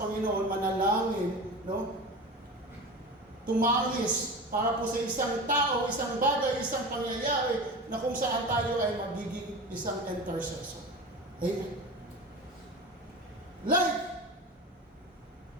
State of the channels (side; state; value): both; normal; correlation 0.30